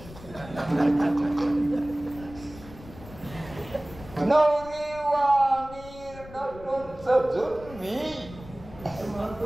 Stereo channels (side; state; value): left; noise; rumble, 17 dB below the sound